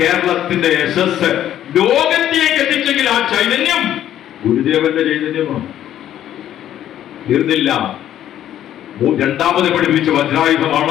യശസ് ലോകത്തിലേക്ക് എത്തിച്ചെങ്കിൽ ആ ചൈതന്യം ഗുരുദേവന്റെ ചൈതന്യമാണ്. തീർന്നില്ല. രണ്ടാമത് പഠിപ്പിച്ച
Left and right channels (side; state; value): right; quieter; 11.5 dB